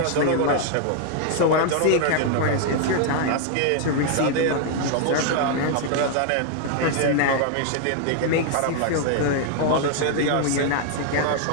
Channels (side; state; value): both; different; correlation 0.00